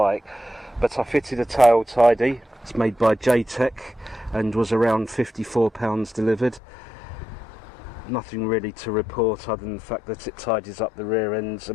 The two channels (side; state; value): right; drops out; at 6.6 s